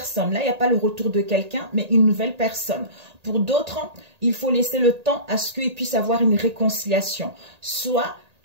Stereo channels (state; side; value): late; left; 1.8 ms